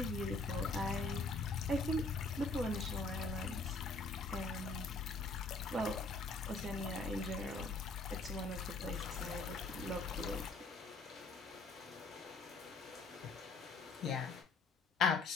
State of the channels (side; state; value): right; quieter; 3.4 dB